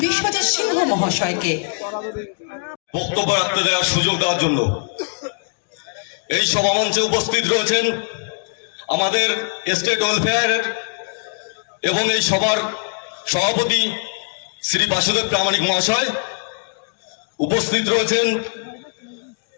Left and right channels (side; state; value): right; silent; 65 dB below the other